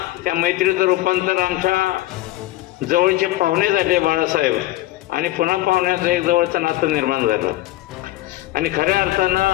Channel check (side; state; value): right; quieter; 16.6 dB